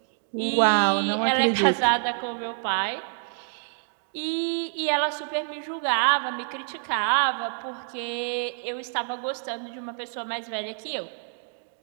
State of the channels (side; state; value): left; silent; digital silence